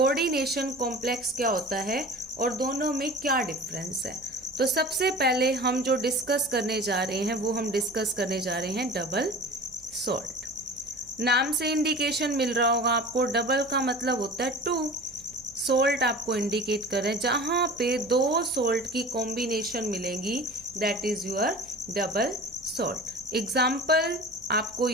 कॉम्प्लेक्स क्या होता है और दोनों में क्या डिफरेंस है। तो सबसे पहले हम जो डिस्कस करने जा रहे हैं वो हम डिस्कस करने जा रहे हैं डबल सोल्ट। नाम से इंडिकेशन मिल रहा होगा आपको, डबल का मतलब होता है 2, सोल्ट आपको इंडिकेट कर रहे हैं, जहां पे 2 सोल्ट की कॉम्बिनेशन मिलेंगी that is your double salt. Example आपको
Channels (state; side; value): noise; right; hum, 25 dB below the sound